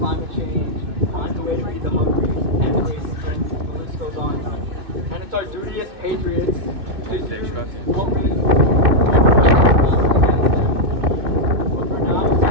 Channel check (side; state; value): left; late; 2.6 ms